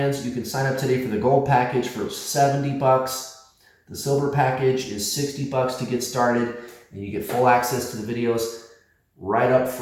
You can sign up today for the gold package for $70. The silver package is $60 to get started, and you get full access to the videos right up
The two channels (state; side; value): identical; both; correlation 1.00